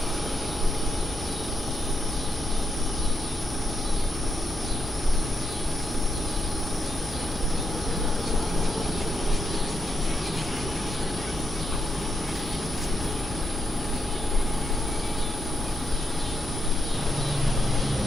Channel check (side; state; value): both; normal; correlation 0.82